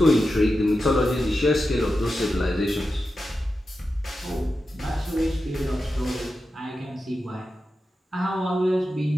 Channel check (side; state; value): both; normal; correlation 0.91